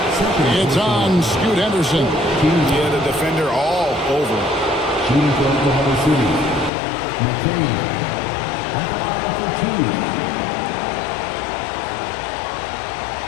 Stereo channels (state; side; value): drops out; right; at 6.7 s